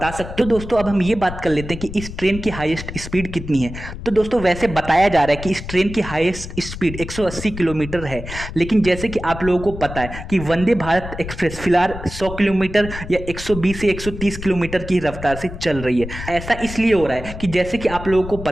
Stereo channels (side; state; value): left; noise; rumble, 10 dB below the sound